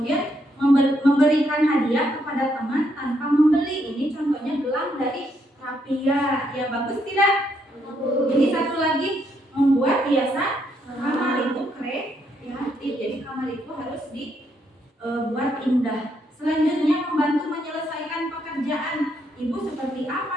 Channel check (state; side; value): normal; both; correlation 0.75